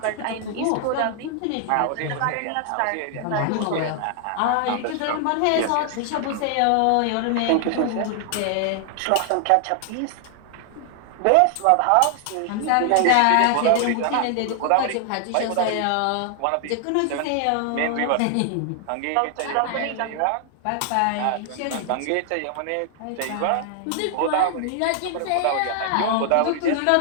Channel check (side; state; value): both; different; correlation 0.00